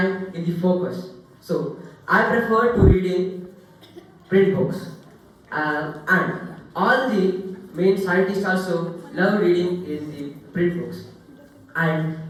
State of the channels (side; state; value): both; identical; correlation 1.00